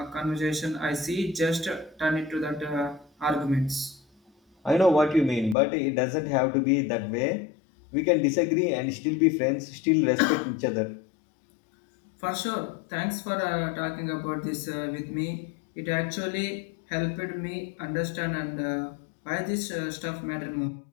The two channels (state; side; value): drops out; right; at 5.6 s